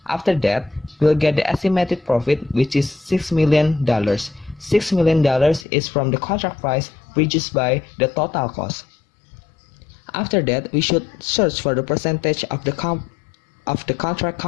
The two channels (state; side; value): drops out; right; at 5.7 s